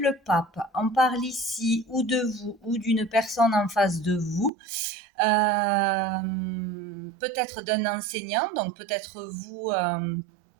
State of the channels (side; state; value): left; drops out; at 4.5 s